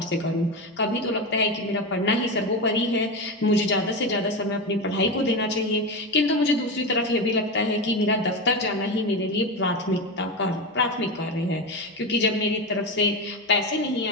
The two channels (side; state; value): both; normal; correlation 0.17